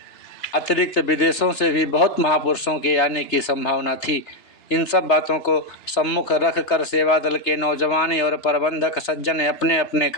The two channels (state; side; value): late; right; 2.9 ms